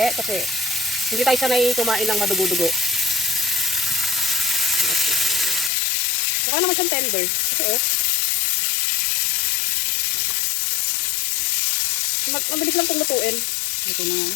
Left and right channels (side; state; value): right; drops out; at 5.7 s